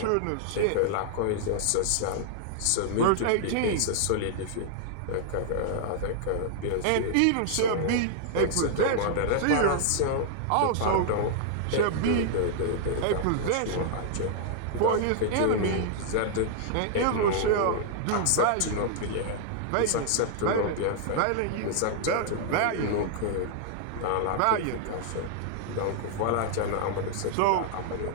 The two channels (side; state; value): both; different; correlation -0.01